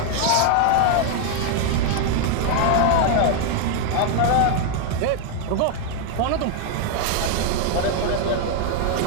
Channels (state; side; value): different; both; correlation 0.00